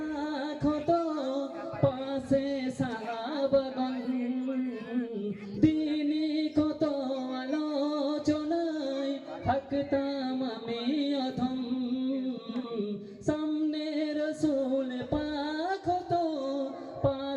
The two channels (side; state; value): both; identical; correlation 1.00